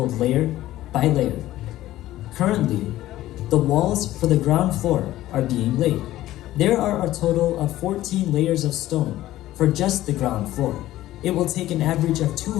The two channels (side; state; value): right; quieter; 14.9 dB